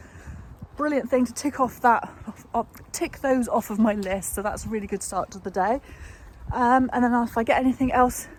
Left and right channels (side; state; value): both; identical; correlation 1.00